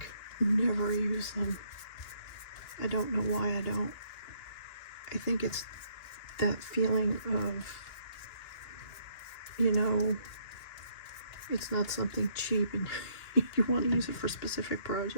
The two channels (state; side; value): late; right; 2.9 ms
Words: never use them. I don't know why I don't. I think it's that feeling of, you know, it's not something cheap and you want to use it for specific